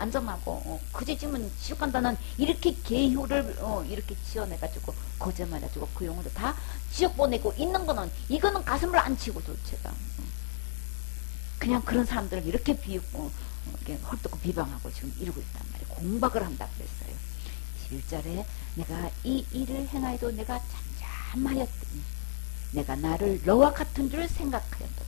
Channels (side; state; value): right; silent; 57 dB below the other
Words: 전하고 그제 지금 지옥 간다는 이렇게 계효를 이렇게 지어내가지고 거짓말해가지고 그 영혼들 다 지옥 보내고 있는 거는 이거는 가슴을 안 치고 도대체가 그냥 그런 사람들을 이렇게 비웃고 이렇게 헐뜯고 비방하고 지금 이러고 있단 말이에요. 공박을 한다 그랬어요. 11절에 내가 이 일을 행하여도 내가 잠잠하였더니 내가 나를 너와 같은 줄